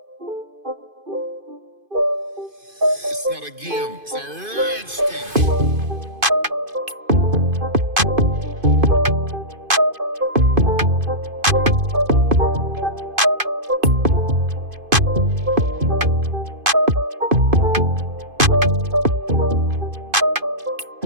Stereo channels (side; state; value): left; late; 2.5 ms